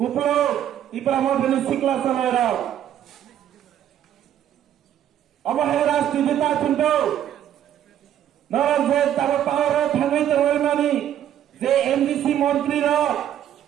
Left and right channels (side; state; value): left; quieter; 10.7 dB